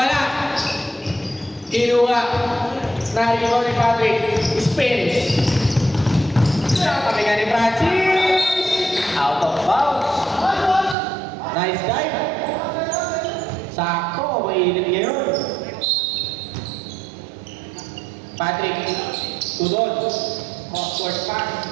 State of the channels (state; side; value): drops out; left; at 11.0 s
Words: Kinuha. Narigaw ni Patrick. Spins. Kami nga ni Francis. Out of bounds. Nice dive. Sakto, mainit ngayon. Patrick, Tudon, cross-court pass.